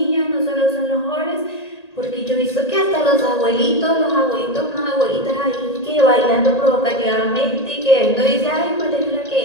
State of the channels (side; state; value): right; late; 1.8 ms